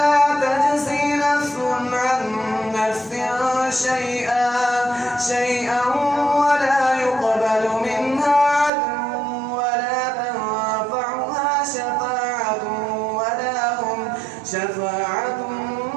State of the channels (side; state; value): left; drops out; at 8.7 s